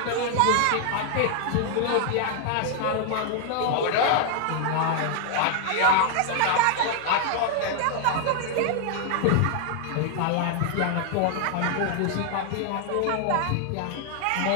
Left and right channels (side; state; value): both; different; correlation 0.00